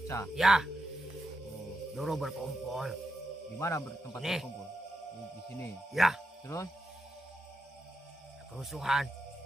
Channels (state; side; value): normal; both; correlation 0.84